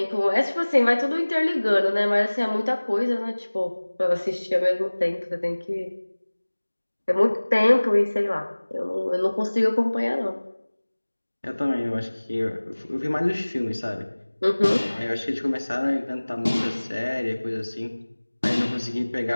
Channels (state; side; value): inverted; both; correlation -1.00